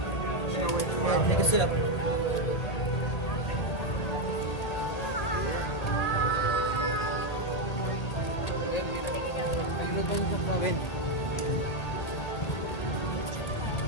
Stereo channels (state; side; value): late; right; 1.8 ms